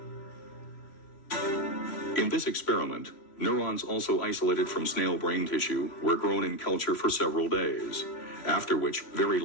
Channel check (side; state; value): right; late; 3.1 ms